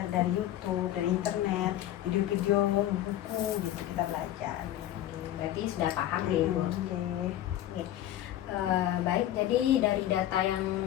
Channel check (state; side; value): quieter; right; 12.9 dB